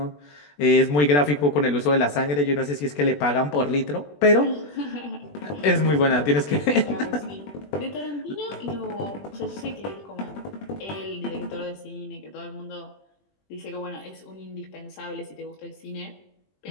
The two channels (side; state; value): right; late; 20 ms